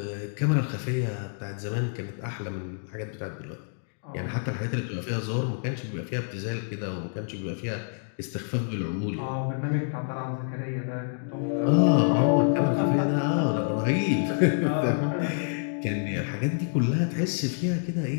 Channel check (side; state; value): right; silent; digital silence